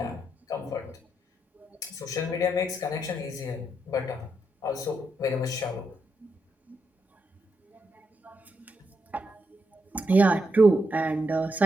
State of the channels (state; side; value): normal; both; correlation 0.82